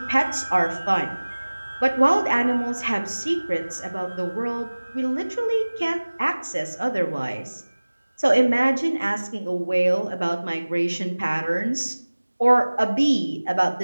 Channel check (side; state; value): both; inverted; correlation -1.00